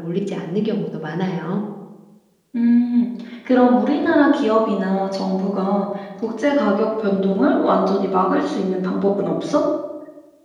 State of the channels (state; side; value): identical; both; correlation 1.00